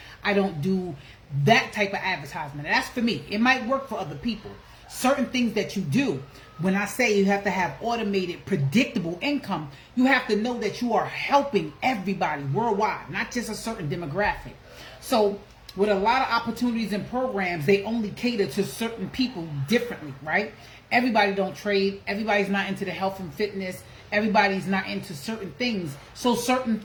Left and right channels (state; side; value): identical; both; correlation 1.00